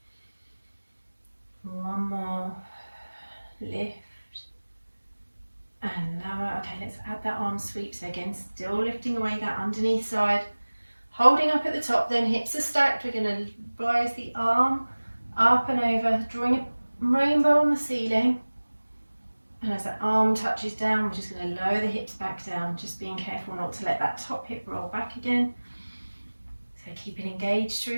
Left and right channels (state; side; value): inverted; both; correlation -1.00